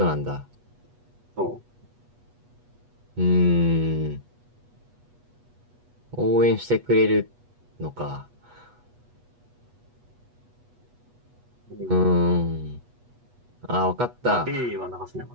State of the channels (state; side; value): late; left; 8.3 ms